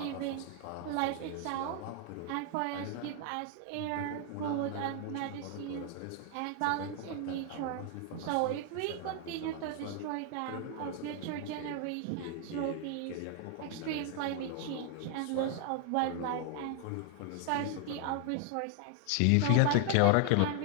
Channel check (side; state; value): both; different; correlation 0.00